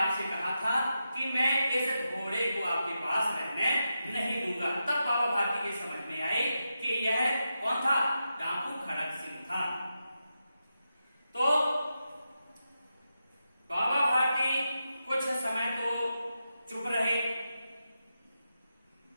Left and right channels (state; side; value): inverted; both; correlation -0.88